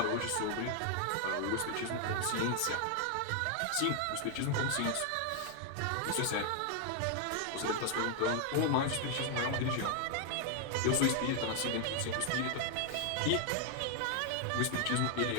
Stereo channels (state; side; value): different; both; correlation 0.00